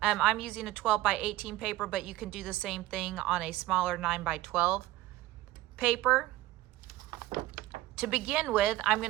I'm using a 12 by 18 paper, but you can do the same thing on a smaller 9 by 12 paper. To begin with, I'm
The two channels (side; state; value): left; quieter; 16.7 dB